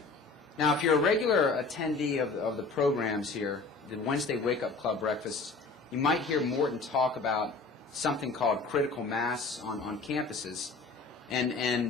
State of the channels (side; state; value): right; quieter; 3.9 dB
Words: Now, if you're a regular attendee of the programs here, the Wednesday Wake Up Club breakfasts, you might hear Morton talk about something called critical mass on campuses.